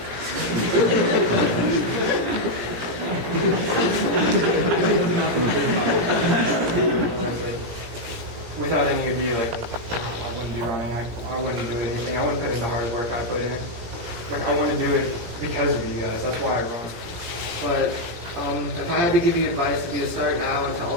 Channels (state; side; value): late; left; 17 ms